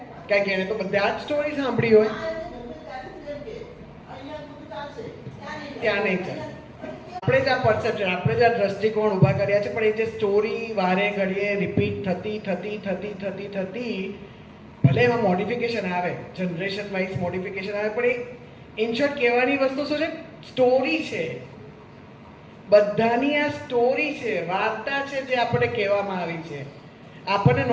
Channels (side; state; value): both; identical; correlation 1.00